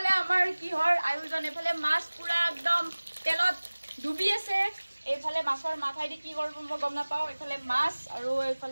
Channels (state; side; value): inverted; both; correlation -1.00